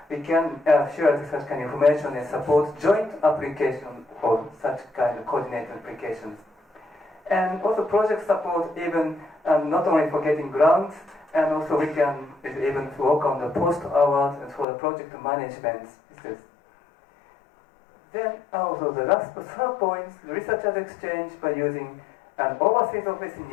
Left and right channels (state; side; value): drops out; right; at 14.7 s